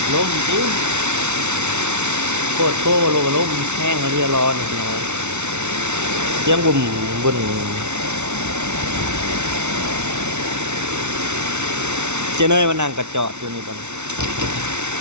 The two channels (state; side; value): late; left; 0.82 ms